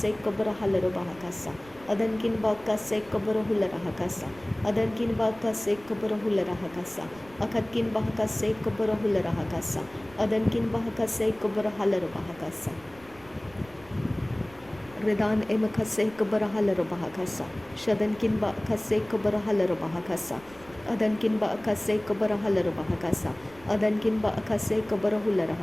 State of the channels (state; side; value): noise; right; rumble, 23 dB below the sound